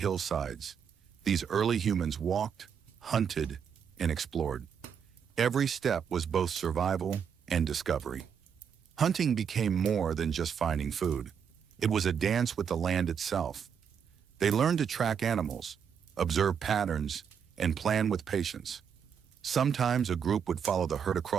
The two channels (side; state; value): left; quieter; 7.4 dB